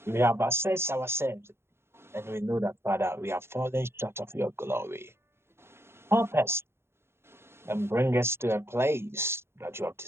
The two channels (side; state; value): left; late; 0.12 ms